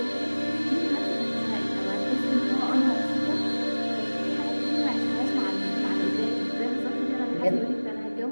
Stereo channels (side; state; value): both; inverted; correlation -1.00